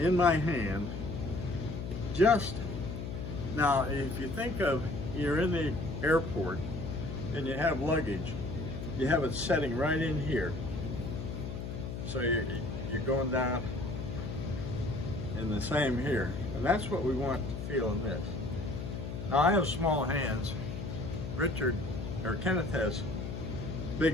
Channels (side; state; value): left; noise; hum, 6 dB below the sound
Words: my hand. Just now, if you think of, you're in the airport and you have luggage, you have it setting right in here. So you're going down, and the same here. And that's what we want to feel in this. Now I have small hands. Kenneth has